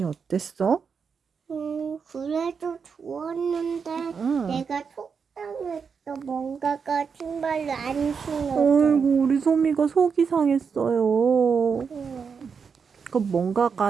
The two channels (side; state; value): left; quieter; 6.0 dB